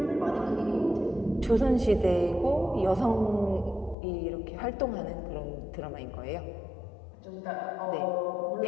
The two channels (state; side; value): drops out; right; at 4.0 s